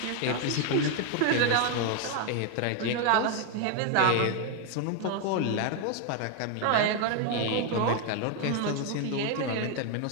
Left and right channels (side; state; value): both; different; correlation 0.01